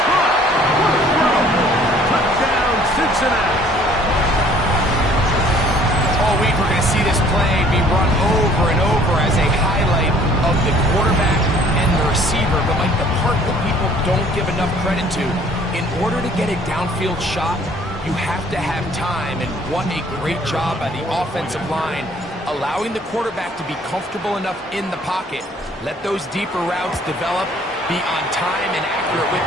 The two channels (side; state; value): both; normal; correlation 0.56